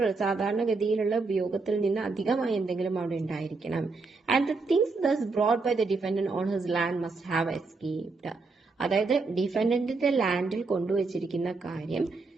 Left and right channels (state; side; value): quieter; left; 4.0 dB